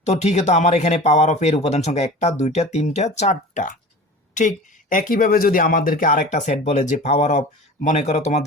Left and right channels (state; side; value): normal; both; correlation 0.37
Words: তো ঠিক আছে, তো আমার এখানে পাওয়ার অফ এর উপাদান সংখ্যা 1টা 2টা 3টা 4টা। ঠিক একইভাবে যদি আমাদেরকে আরেকটা সেট বলে যে পাওয়ার অফ, মনে করো